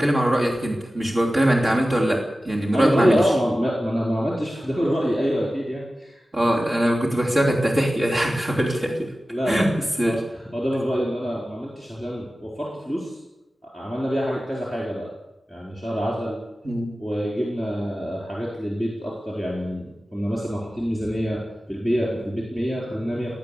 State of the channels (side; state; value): both; normal; correlation 0.95